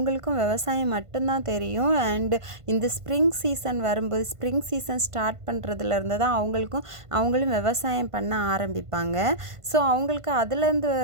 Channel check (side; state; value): left; late; 1.5 ms